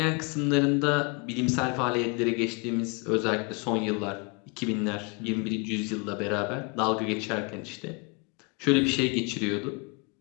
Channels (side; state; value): right; quieter; 31.4 dB